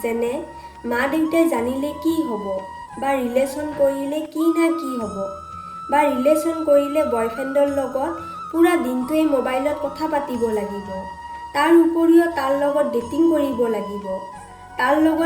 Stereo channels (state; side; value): identical; both; correlation 1.00